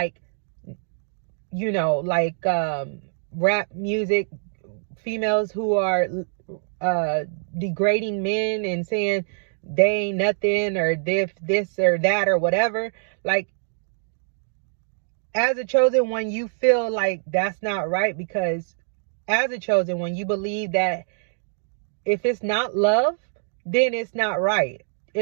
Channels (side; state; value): left; silent; digital silence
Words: like rap music, females who are degrading men and saying they ain't nothing, or this or that or whatever. Like, as a chosen one, you feel like that's not right, because as a chosen one, you believe that if it's not love, then it's not right.